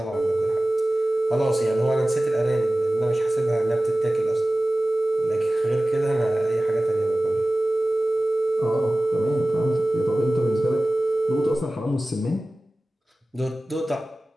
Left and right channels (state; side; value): normal; both; correlation 0.97